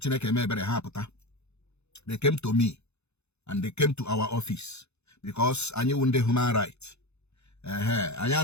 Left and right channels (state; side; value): late; right; 0.81 ms